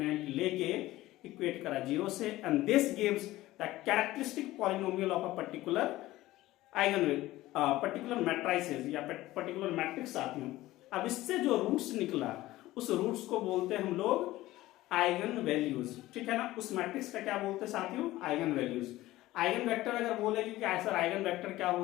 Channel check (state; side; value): quieter; right; 16.8 dB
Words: लेके इक्वेट करा 0 से, and this gives the characteristic polynomial of a particular particular matrices या पर्टिकुलर मैट्रिक्स साथियों। अब इससे जो रूट्स निकला उस रूट्स को बोलते हैं हम लोग आइगन वैल्यूज, ठीक है ना। उस मैट्रिक्स का क्या बोलते हैं साथियों, आइगन वैल्यूज। आइगन वेक्टर अगर बोलेगी कि सर आइगन वेक्टर क्या